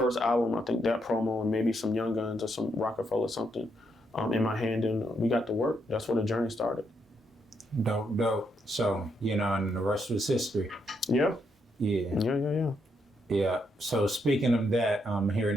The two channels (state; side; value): normal; both; correlation 0.77